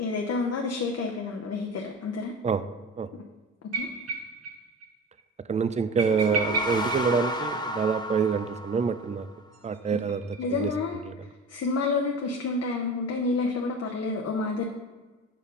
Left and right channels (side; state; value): both; normal; correlation 0.32